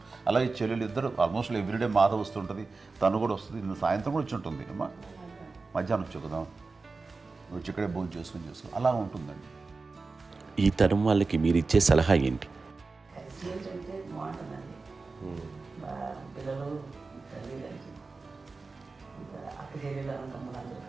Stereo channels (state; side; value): quieter; left; 4.0 dB